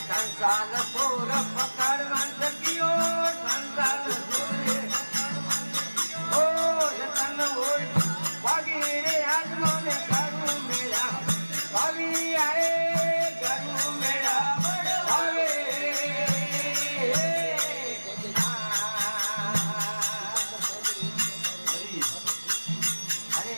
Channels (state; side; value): inverted; both; correlation -1.00